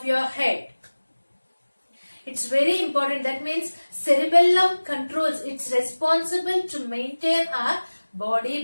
your head. It's very important. That means cerebellum controls. It's responsible to maintain our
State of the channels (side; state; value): both; inverted; correlation -1.00